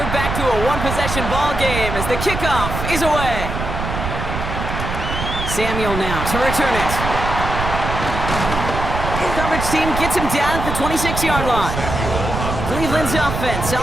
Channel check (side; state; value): right; noise; rumble, 4 dB below the sound